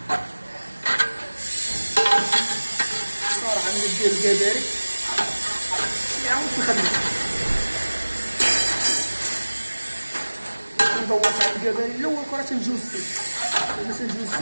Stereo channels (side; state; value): both; inverted; correlation -1.00